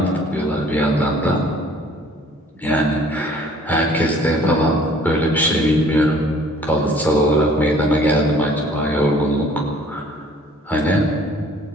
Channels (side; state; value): both; normal; correlation 0.55